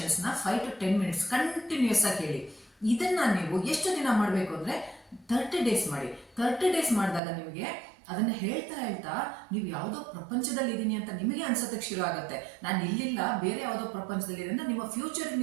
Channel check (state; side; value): drops out; left; at 7.2 s